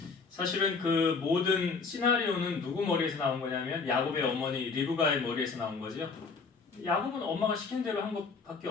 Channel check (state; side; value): quieter; right; 4.7 dB